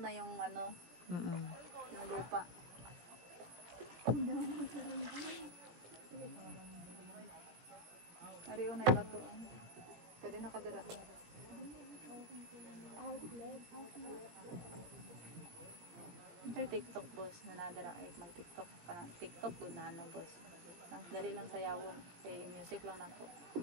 na yung ano, yung lupa. Ariyo na iba to. Pwede nakadira. Ito yung TikTok, boss, na nadara ay mag-TikTok ka na. TikTok doon na boss. Nang dali lang sayawon. Kay music lang ako.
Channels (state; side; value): late; left; 17 ms